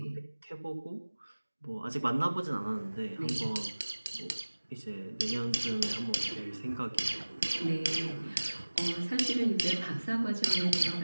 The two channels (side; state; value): both; inverted; correlation -1.00